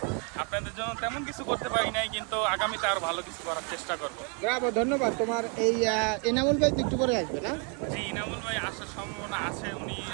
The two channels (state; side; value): quieter; left; 36.8 dB